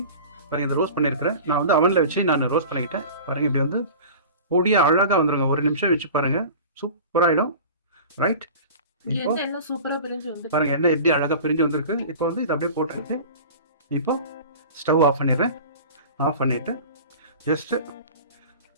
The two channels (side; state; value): both; inverted; correlation -0.37